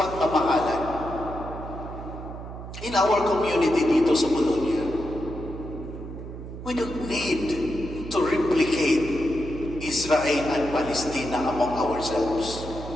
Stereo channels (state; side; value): noise; right; hum, 10 dB below the sound